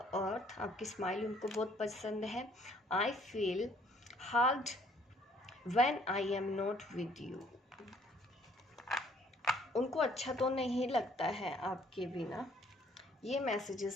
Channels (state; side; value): normal; both; correlation 0.62